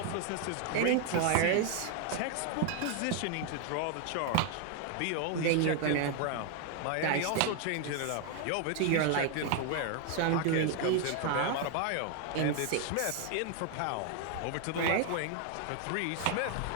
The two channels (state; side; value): different; both; correlation 0.00